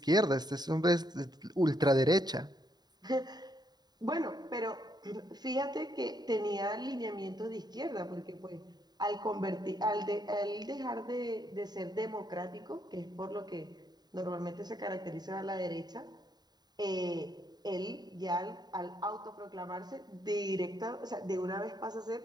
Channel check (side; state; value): left; late; 0.20 ms